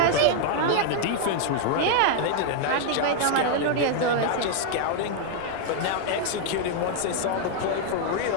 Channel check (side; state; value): both; different; correlation 0.00